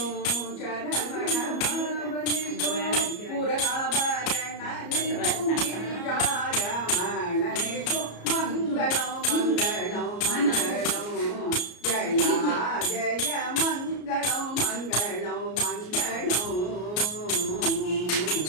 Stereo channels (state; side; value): late; right; 33 ms